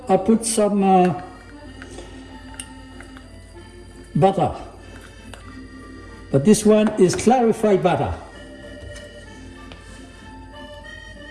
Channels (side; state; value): both; identical; correlation 1.00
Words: I put some butter. But this one is clarified butter.